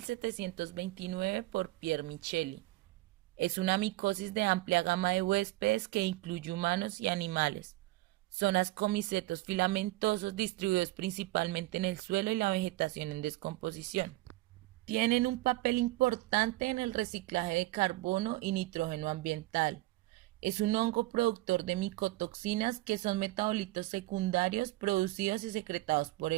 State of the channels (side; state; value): left; quieter; 19.2 dB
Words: por Pierre Micheli. Es una micosis de amplia gama de huéspedes que incluye humanos y animales. Son ascomicetos filamentosos distribuidos principalmente en el suelo y la vegetación en descomposición. Tienen un papel importante en el reciclaje de carbono y nitrógeno ambiental. Es un hongo productor de micotoxinas que son metabolitos secundarios producidos y secretados por